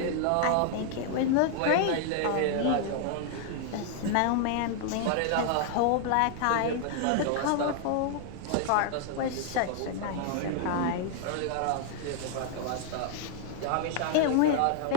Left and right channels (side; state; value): both; different; correlation 0.00